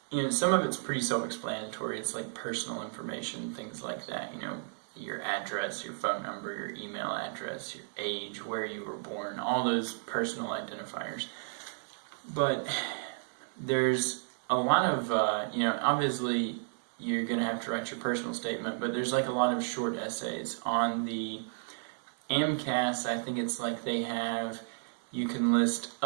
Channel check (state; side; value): silent; left; digital silence